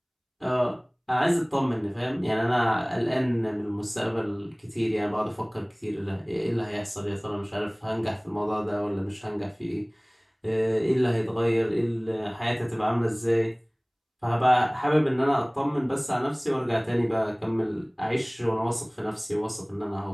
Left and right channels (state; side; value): identical; both; correlation 1.00